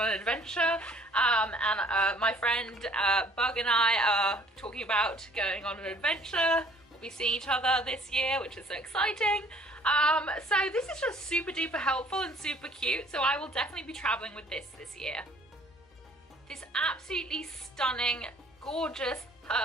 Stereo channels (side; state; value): both; normal; correlation 0.56